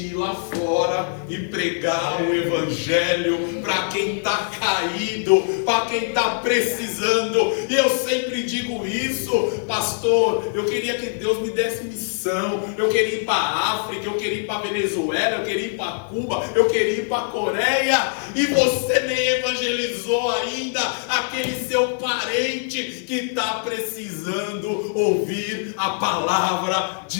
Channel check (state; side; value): silent; right; digital silence